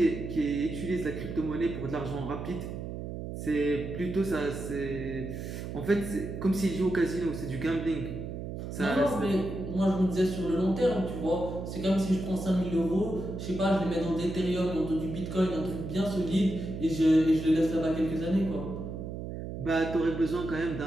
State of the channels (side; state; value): right; noise; hum, 7 dB below the sound